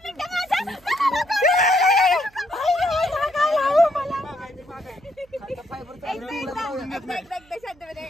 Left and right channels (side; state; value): right; noise; hum, 29 dB below the sound